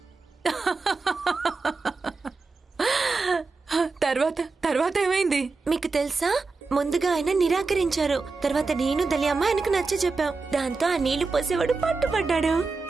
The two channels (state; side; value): quieter; left; 4.1 dB